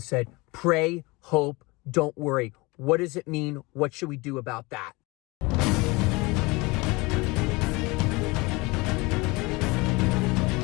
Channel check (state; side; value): quieter; right; 24.6 dB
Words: pray, hope, don't worry. What does it mean? What should we do about that?